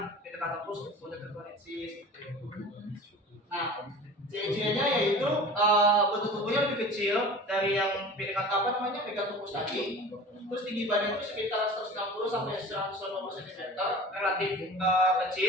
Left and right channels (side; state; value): both; normal; correlation 0.39